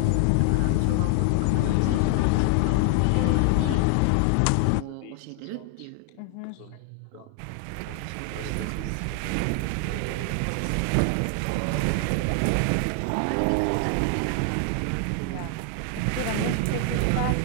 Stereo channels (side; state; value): both; different; correlation 0.00